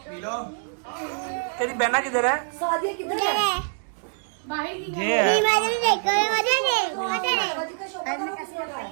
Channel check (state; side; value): silent; left; digital silence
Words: तेरी बहना किधर है? ये है।